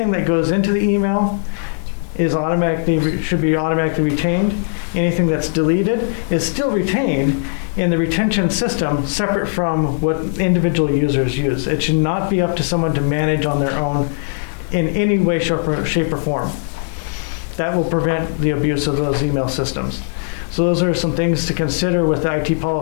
that goes into the email should be automatically retained. Anything that's deleted is still retained in the retention system, separate from what individual users use. It should not be up to someone to manage on their own in any way, shape, or form. That will prevent the abuse of those email systems. So those are some things to consider with the IT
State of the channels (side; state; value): right; silent; digital silence